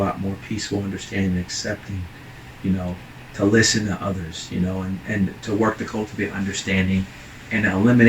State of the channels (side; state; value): both; identical; correlation 1.00